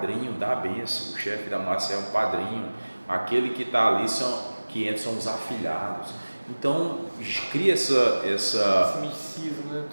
da bênção. O chefe da máfia é um padrinho, aquele que está ali, que entra são os afilhados. Então esse misticismo, né?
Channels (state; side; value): inverted; both; correlation -1.00